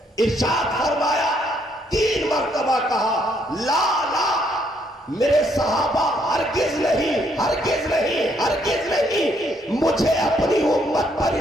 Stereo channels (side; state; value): both; normal; correlation 0.71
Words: इरशाद फरमाया, 3 मरतबा कहा, ला ला मेरे सहाबा, हरगिज नहीं, हरगिज नहीं, हरगिज नहीं। मुझे अपनी उम्मत पर